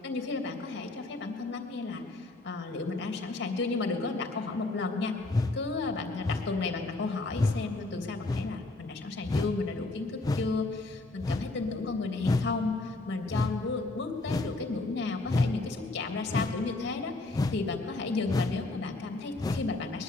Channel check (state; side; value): quieter; right; 3.0 dB